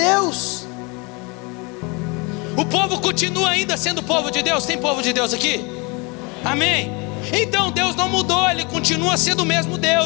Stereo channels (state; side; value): quieter; right; 29.0 dB